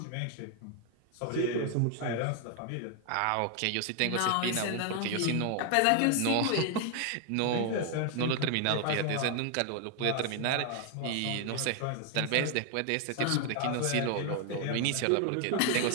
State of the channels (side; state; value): both; different; correlation 0.00